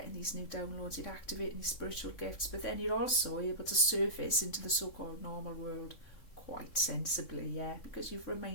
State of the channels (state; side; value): late; right; 3.6 ms